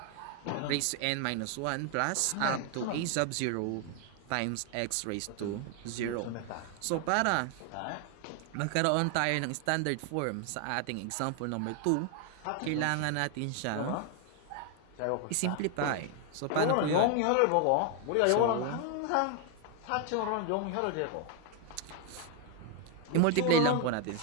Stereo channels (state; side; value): different; both; correlation 0.01